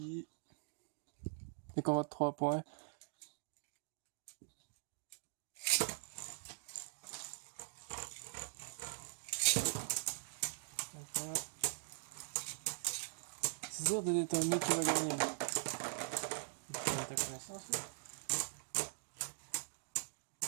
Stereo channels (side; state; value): left; silent; digital silence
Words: Les combats de 3 points. Voilà. C'est dur de déterminer qui va gagner. Ta connaissance, là.